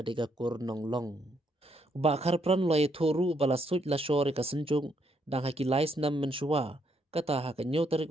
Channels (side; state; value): both; normal; correlation 0.74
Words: kur nonglong ba Kharpran loi thoru bala suj la shore ka senjung dang haki lais nam menshua kata ha ka nyotarik